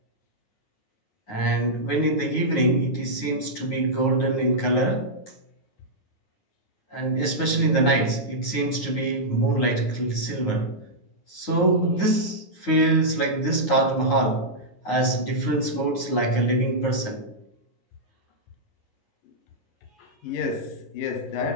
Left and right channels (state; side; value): late; right; 9.5 ms